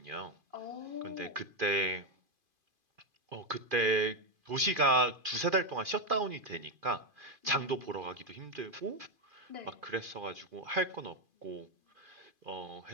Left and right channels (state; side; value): late; left; 2.5 ms